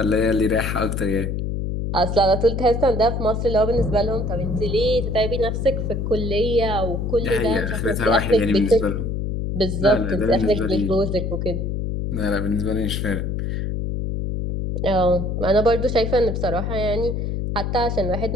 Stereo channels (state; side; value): noise; left; hum, 2 dB below the sound